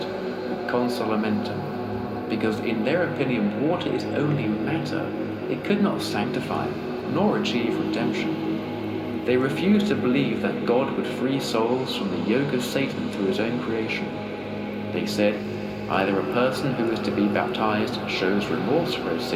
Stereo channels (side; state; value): both; identical; correlation 1.00